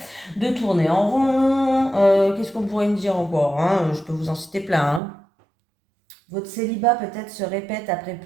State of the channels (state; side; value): drops out; left; at 5.0 s